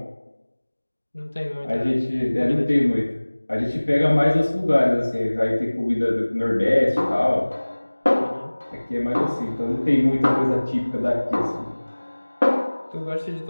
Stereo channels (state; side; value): inverted; both; correlation -1.00